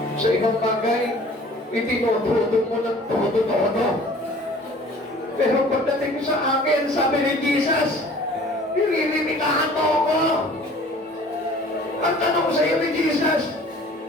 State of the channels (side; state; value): both; normal; correlation 0.49